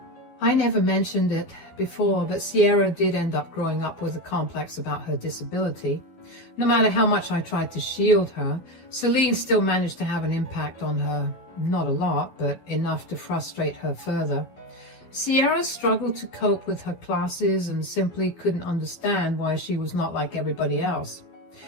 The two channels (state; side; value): late; right; 12 ms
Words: I never mentioned it before, but Sierra did end up growing up with a complex about her disability. No matter how much I tried to shield her, Celine still managed to have an impact on her. Not a lot, but enough to frustrate her further. Sierra struggled to cope with her classes and simply couldn't understand why she was not like everybody else.